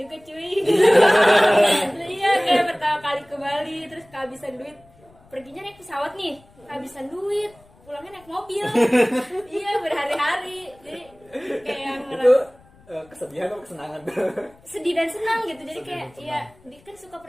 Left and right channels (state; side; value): noise; left; rumble, 28 dB below the sound